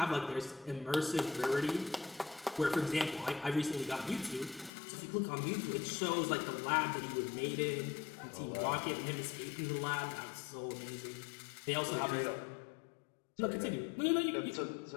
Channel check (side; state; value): right; drops out; at 4.7 s